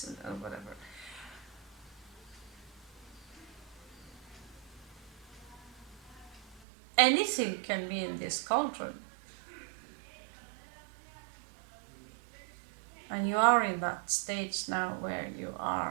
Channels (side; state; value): left; drops out; at 6.7 s